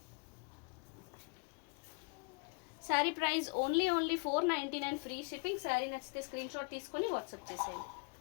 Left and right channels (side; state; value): right; quieter; 33.3 dB